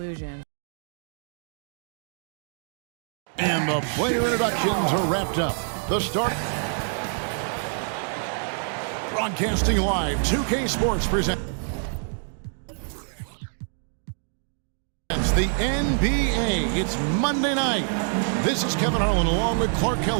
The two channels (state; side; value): silent; left; 61 dB below the other